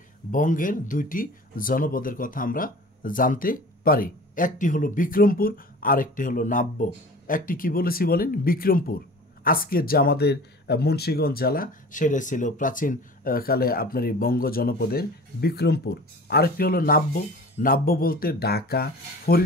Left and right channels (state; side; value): normal; both; correlation 0.41